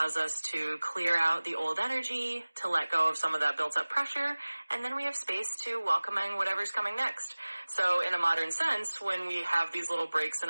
us to clear out the old energy, to let go of some of that built up pressure, and then we have space to welcome in whatever's coming next. So in a modern sense, when we have these little breaks in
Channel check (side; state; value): both; inverted; correlation -1.00